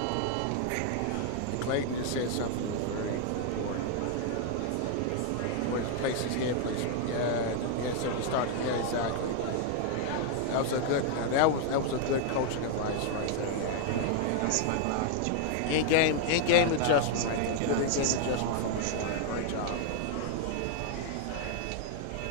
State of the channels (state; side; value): different; both; correlation 0.00